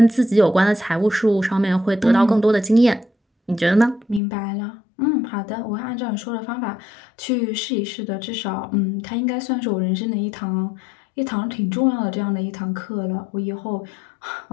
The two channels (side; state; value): right; drops out; at 4.2 s